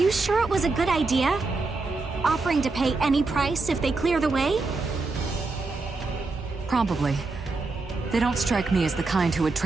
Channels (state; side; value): quieter; left; 3.7 dB